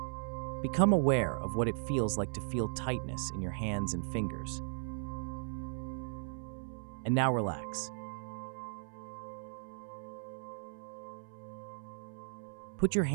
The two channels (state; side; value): silent; left; 53 dB below the other